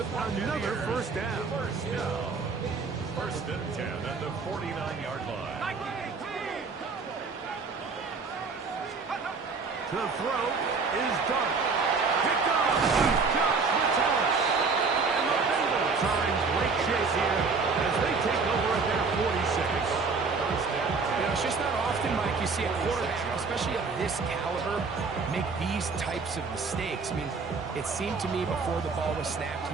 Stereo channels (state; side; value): quieter; left; 4.6 dB